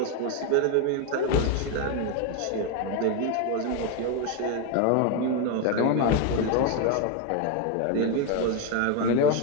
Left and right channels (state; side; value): different; both; correlation 0.01